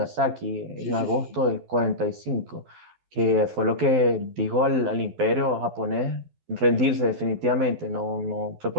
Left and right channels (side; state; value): left; late; 12 ms